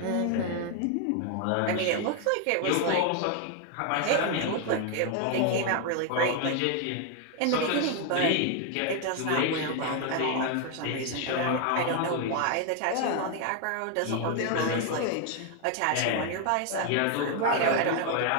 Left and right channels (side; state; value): both; different; correlation 0.01